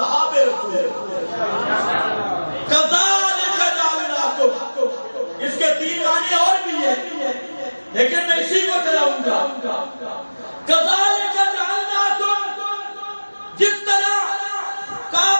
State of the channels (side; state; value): both; inverted; correlation -1.00